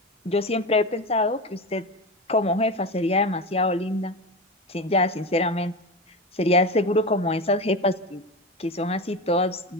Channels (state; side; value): normal; both; correlation 0.23